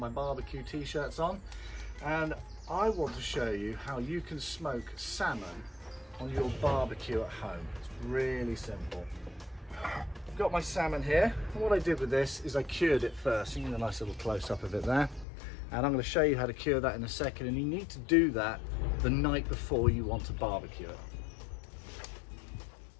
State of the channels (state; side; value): drops out; right; at 15.2 s